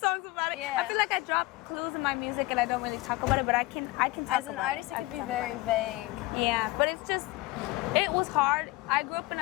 about it. Yeah. I feel like I drop clues in my music and I don't really talk about it, but I can talk As an about artist, it could be very vague. Yeah, but it's just, it was hard. I grew up in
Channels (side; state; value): right; quieter; 20.7 dB